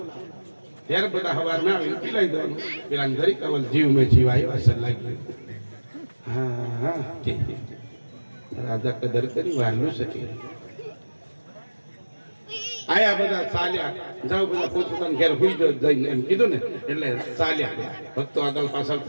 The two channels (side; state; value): both; inverted; correlation -1.00